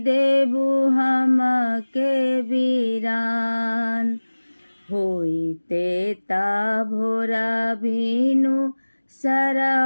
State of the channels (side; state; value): both; inverted; correlation -1.00